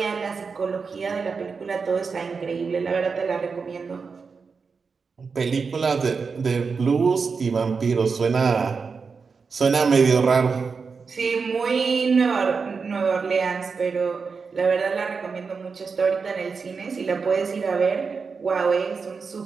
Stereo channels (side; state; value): left; quieter; 5.1 dB